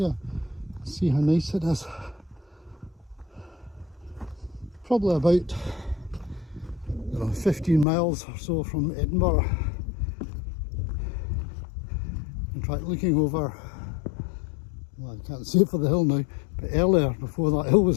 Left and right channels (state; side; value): drops out; right; at 7.9 s